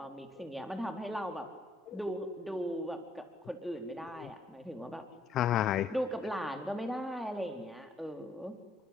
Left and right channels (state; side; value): quieter; right; 3.2 dB